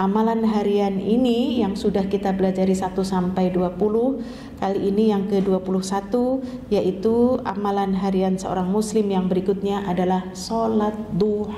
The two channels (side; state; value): both; identical; correlation 1.00